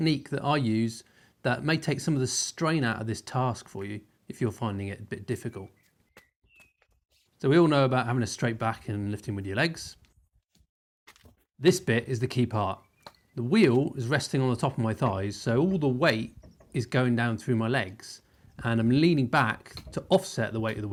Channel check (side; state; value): both; identical; correlation 1.00